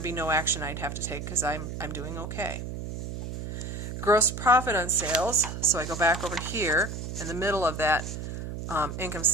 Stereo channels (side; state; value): right; noise; hum, 6 dB below the sound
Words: be no action I'd have to take because I'm doing okay. Gross profit on sales. So I go back over here in the middle of that income